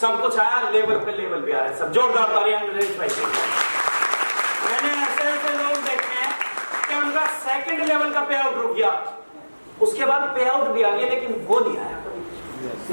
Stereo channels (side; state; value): both; inverted; correlation -1.00